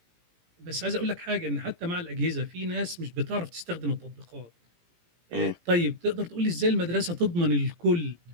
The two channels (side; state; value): left; late; 17 ms